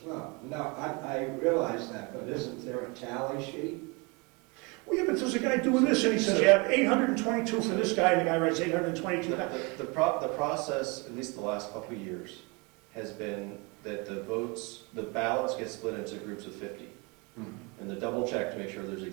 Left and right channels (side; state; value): left; quieter; 29.1 dB